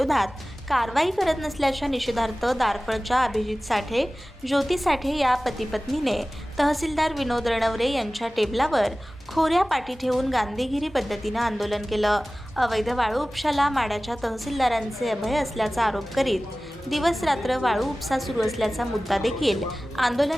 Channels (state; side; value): normal; both; correlation 0.97